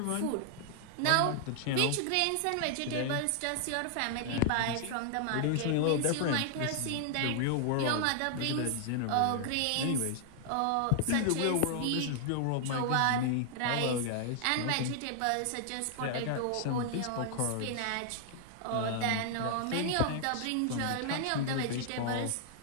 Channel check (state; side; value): different; both; correlation 0.00